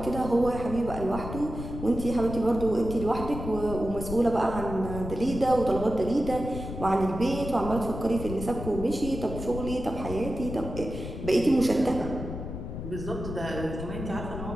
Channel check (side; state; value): left; noise; rumble, 7 dB below the sound